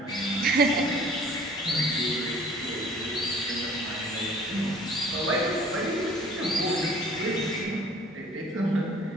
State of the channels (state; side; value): normal; both; correlation 0.51